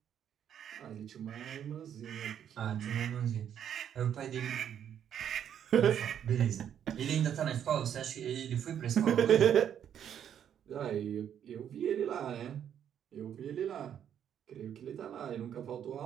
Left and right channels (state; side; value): quieter; left; 9.3 dB